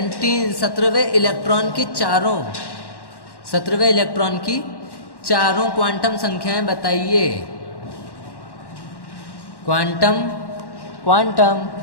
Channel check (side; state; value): right; late; 1.1 ms